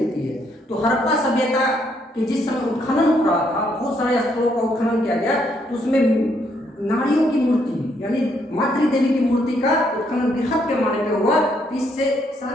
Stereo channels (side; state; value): both; normal; correlation 0.72